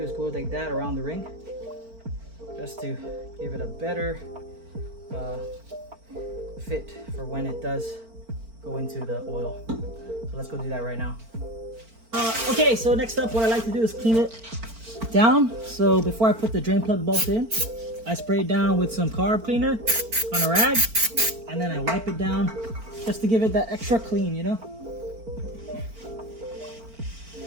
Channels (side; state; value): left; late; 4.4 ms